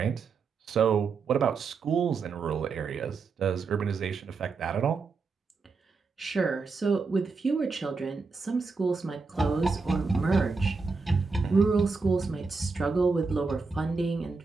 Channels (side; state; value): left; quieter; 4.6 dB